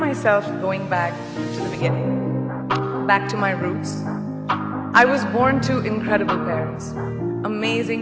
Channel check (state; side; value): identical; both; correlation 1.00